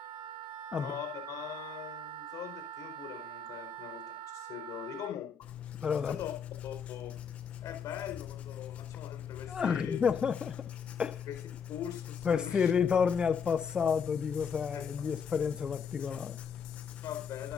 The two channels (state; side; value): quieter; right; 6.3 dB